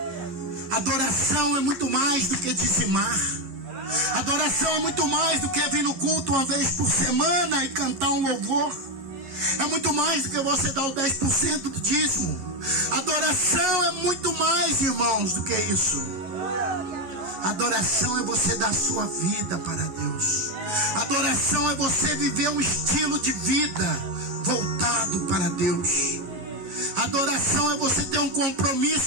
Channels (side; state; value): left; late; 11 ms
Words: Adoração é muito mais do que dizimar. Adoração é muito mais do que vir no culto uma vez por semana e cantar um louvor. É muito mais do que você dar o 10% do dízimo. Adoração é muito mais, irmãos, do que isso. Adoração é você dar a sua vida para Deus. Adoração é você viver um estilo de vida voltado para Deus. Adoração é você ter um